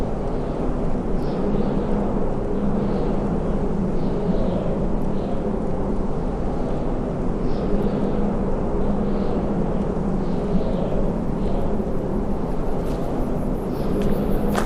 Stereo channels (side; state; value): both; identical; correlation 1.00